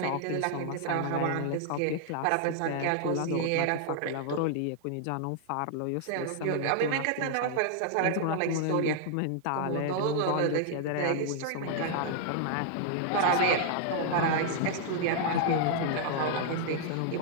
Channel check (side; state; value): both; different; correlation -0.01